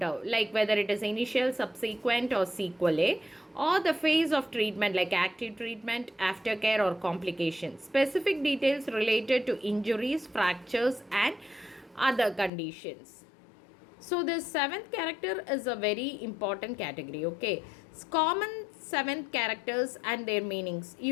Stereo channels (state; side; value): drops out; right; at 12.5 s